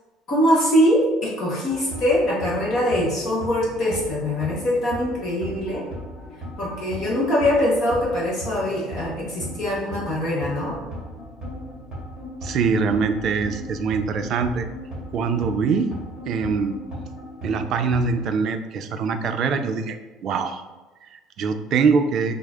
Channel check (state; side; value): normal; both; correlation 0.59